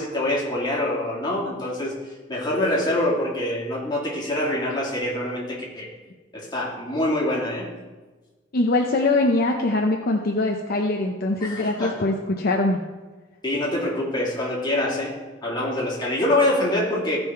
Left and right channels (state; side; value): normal; both; correlation 0.32